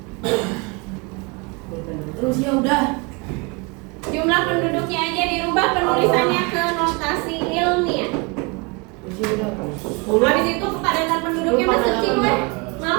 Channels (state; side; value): quieter; left; 29.6 dB